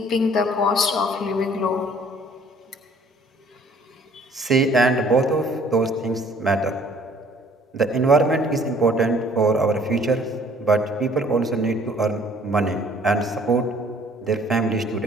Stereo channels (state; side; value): normal; both; correlation 0.57